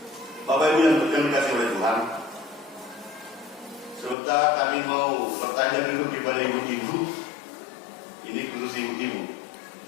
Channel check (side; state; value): right; drops out; at 4.2 s